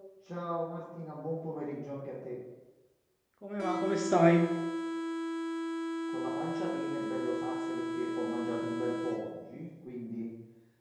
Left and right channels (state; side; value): identical; both; correlation 1.00